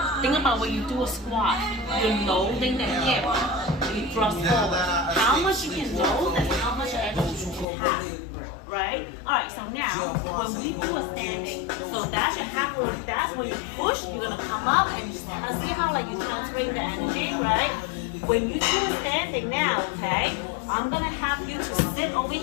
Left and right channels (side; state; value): right; drops out; at 7.7 s